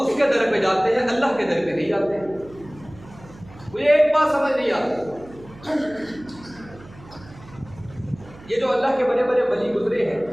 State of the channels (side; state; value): right; noise; hum, 21 dB below the sound